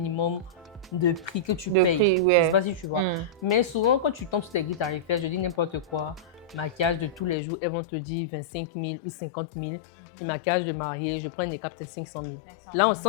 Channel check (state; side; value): drops out; right; at 7.4 s